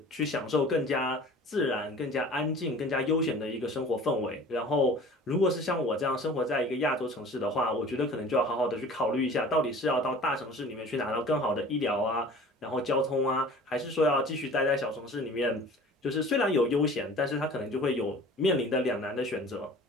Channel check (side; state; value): both; normal; correlation 0.44